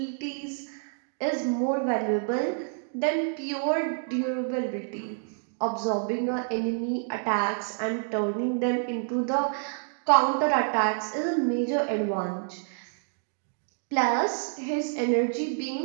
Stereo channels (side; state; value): left; silent; 59 dB below the other